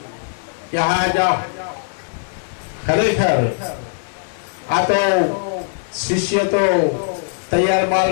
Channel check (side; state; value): right; silent; digital silence